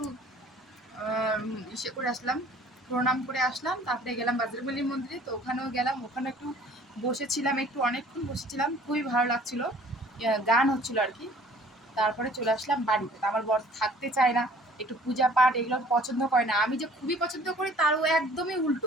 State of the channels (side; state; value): both; normal; correlation 0.53